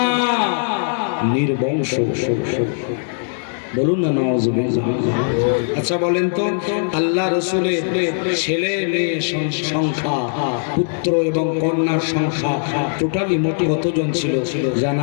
নির্বংশ। বলুন না নাউযুবিল্লাহ। আচ্ছা বলেন তো, আল্লাহ রাসূলের ছেলে মেয়ে সংখ্যা, পুত্র এবং কন্যার সংখ্যা টোটালি মোটে কতজন ছিল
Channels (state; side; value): silent; right; digital silence